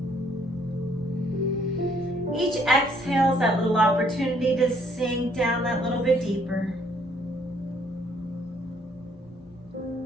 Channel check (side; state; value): both; normal; correlation 0.66